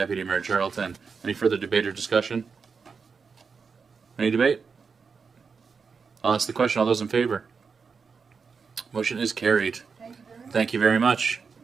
Mayor Charlton. Any further debate or discussion? Any debate? I'll ask the question. All those in favor? Motion is carried. Thank you very much.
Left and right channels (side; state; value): left; quieter; 5.4 dB